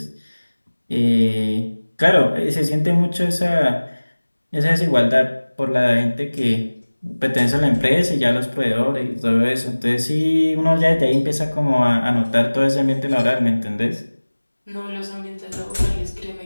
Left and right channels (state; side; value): inverted; both; correlation -1.00